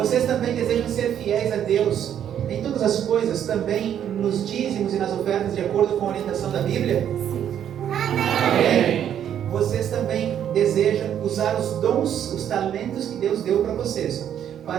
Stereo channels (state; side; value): quieter; left; 9.7 dB